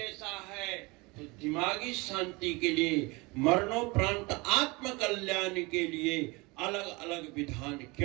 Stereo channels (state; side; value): quieter; left; 25.3 dB